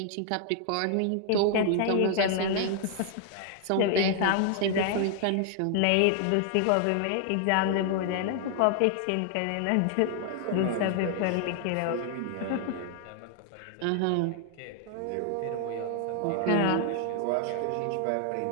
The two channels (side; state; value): both; different; correlation 0.00